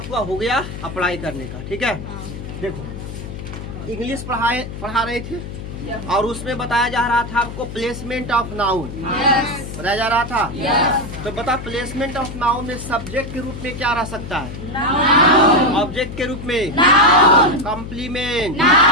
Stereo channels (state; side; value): noise; left; hum, 9 dB below the sound